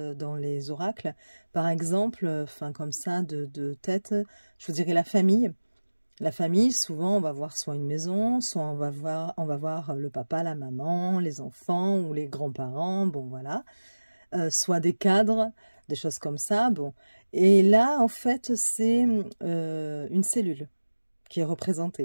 dans les oracles. Par exemple, comme ça, de tête, je vous dirais la famille. La famille, souvent, on va voir soit une maison, soit on va voir le papa, la maman, les enfants ou les grands-parents, bon voilà. Soit des cadres, des choses comme ça, bon. Et là, en fait, c'est une cellule qui est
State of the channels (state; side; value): inverted; both; correlation -1.00